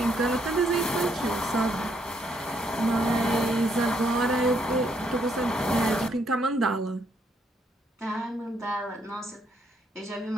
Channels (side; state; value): both; normal; correlation 0.73